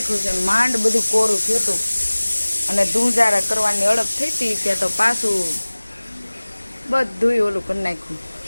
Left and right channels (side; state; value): both; inverted; correlation -1.00